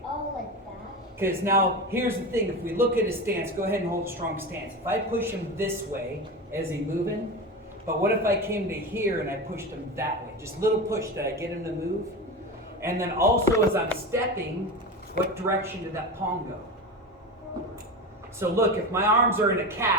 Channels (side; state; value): both; normal; correlation 0.24